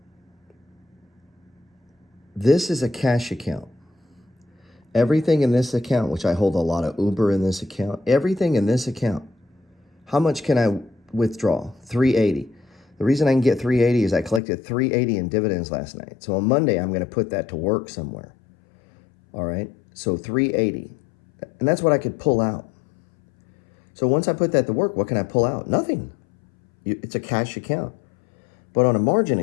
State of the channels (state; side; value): drops out; right; at 14.4 s